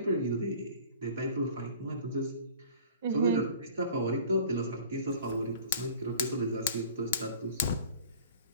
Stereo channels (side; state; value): both; inverted; correlation -0.46